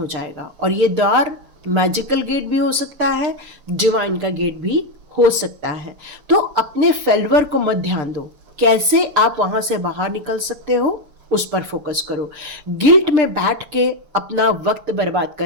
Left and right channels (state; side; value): late; left; 6.7 ms